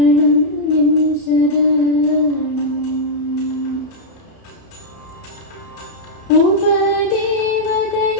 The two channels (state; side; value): late; right; 31 ms